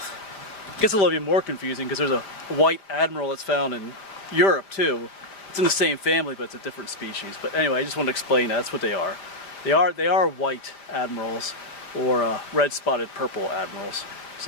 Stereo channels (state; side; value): late; right; 5.0 ms